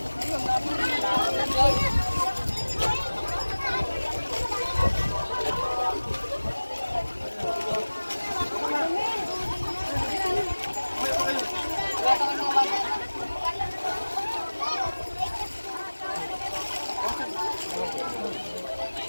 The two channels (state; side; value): inverted; both; correlation -1.00